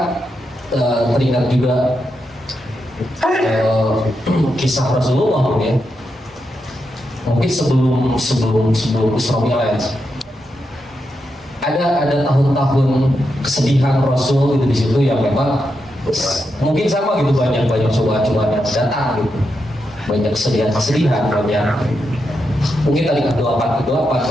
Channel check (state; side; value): normal; both; correlation 0.85